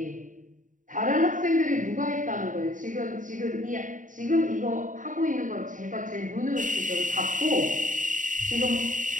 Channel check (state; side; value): late; left; 0.38 ms